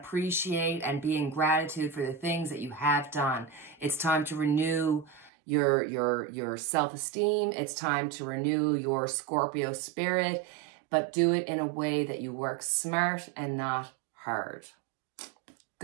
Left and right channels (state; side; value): drops out; left; at 5.3 s